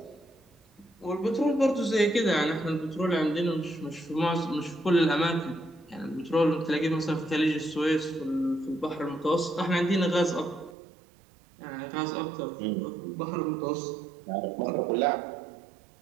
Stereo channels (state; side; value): drops out; left; at 10.8 s